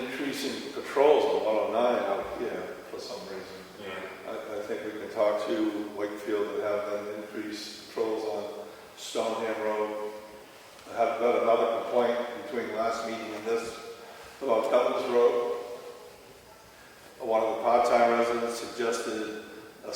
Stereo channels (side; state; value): both; identical; correlation 1.00